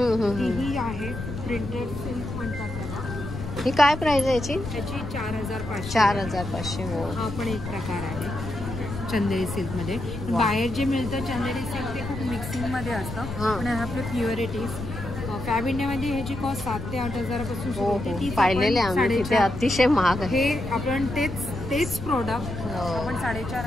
आहे प्रिंटेड सिल्क म्हणतात त्याला. ही काय प्राइस आहे याची? त्याची 4,500. 4,500. हो, हा पण एक प्रकार आहे चंदेरी सिल्कमध्ये. बाहेर जे मिळतं चंदेरी सिल्क ते खूप मिक्सिंगमध्ये असतं, पण हे आपले प्युअरिटीज. फॅब इंडियामध्ये ह्याची कॉस्ट 7 ते 8,000 पासून सुरू होते. ती पाहिलेले आम्ही तिथे अतिशय महाग आहे. हे आपण तेच प्रोडक्ट आपण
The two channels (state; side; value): noise; left; rumble, 8 dB below the sound